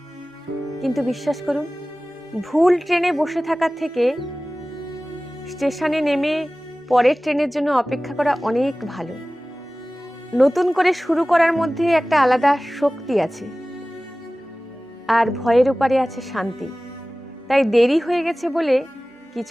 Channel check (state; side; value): normal; both; correlation 0.97